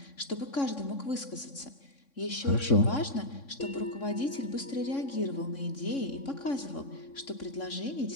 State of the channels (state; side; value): late; right; 3.6 ms